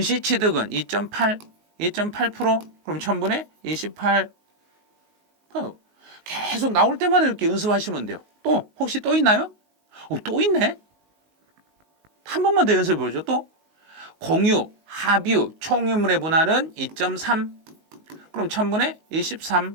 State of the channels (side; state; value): left; late; 19 ms